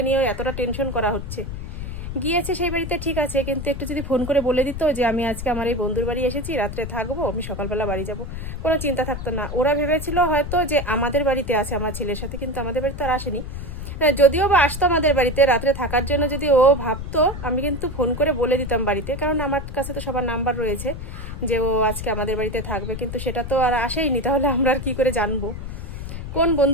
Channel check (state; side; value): noise; left; rumble, 7 dB below the sound